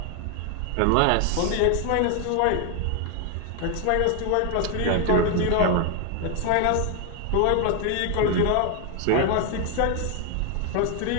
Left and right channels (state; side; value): different; both; correlation 0.00